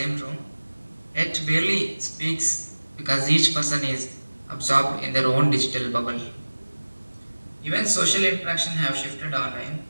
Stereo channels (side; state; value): both; inverted; correlation -1.00